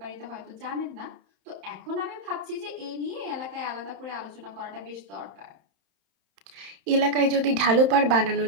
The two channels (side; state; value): left; late; 31 ms